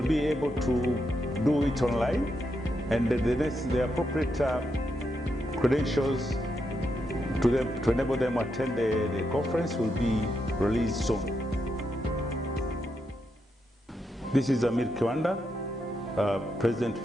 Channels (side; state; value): both; normal; correlation 0.83